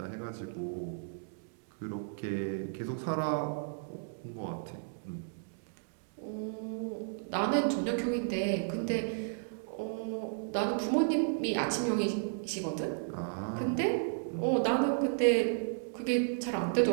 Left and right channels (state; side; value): silent; left; digital silence